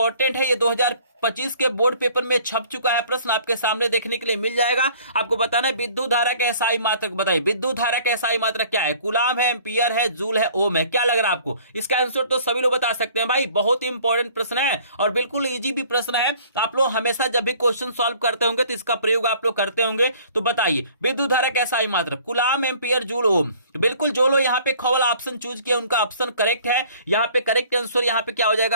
है, ये 2025 के बोर्ड पेपर में छप चुका है। प्रश्न आपके सामने देखने के लिए मिल जाएगा। आपको बताना है विद्युत धारा के एसआई मात्रक। बताइए विद्युत धारा के एसआई मात्रक क्या है? कूलाम है, एम्पियर है, जूल है, ओम है? क्या लग रहा है आपको? इसका आंसर तो सभी लोग बता सकते हैं भाई, बहुत ही इंपॉर्टेंट प्रश्न है और बिल्कुल इजी भी प्रश्न है। आप लोग हमेशा जब भी क्वेश्चन सॉल्व करते होंगे तो इसका प्रयोग आप लोग करते होंगे। तो बताइए विद्युत धारा का एसआई मात्रक, कूलाम, एम्पियर, जूल, ओम। तो बिल्कुल जो लोग यहाँ पे ख वाला ऑप्शन चूज किया उनका ऑप्शन करेक्ट है। यहाँ पे करेक्ट आंसर यहाँ पे क्या हो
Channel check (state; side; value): inverted; both; correlation -0.53